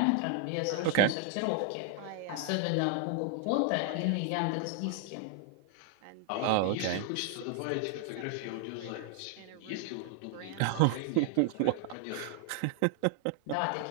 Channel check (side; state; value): both; different; correlation 0.00